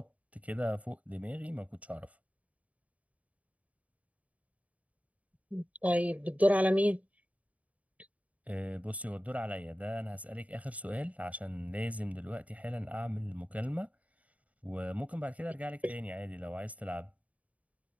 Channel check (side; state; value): left; late; 0.069 ms